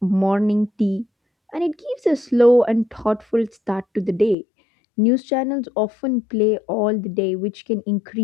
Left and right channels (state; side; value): drops out; right; at 4.4 s